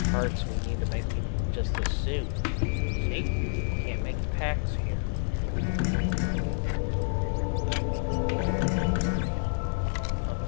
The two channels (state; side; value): silent; right; digital silence